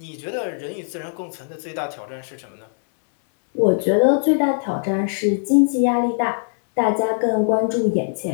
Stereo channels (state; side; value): silent; right; 61 dB below the other